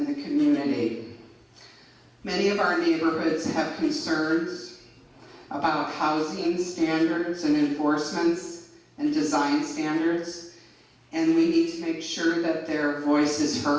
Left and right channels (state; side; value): identical; both; correlation 1.00